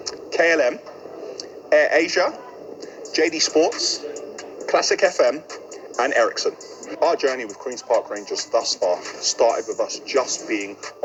KLM, Air Asia, JD Sports, Classic FM, and Ericsson. Our journey with Queen's Park Rangers thus far started with us just being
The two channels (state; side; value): identical; both; correlation 1.00